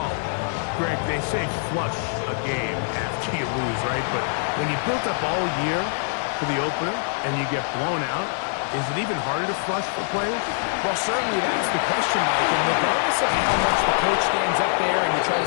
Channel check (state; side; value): silent; right; digital silence